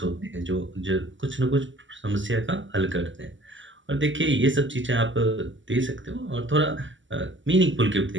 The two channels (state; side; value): late; left; 0.55 ms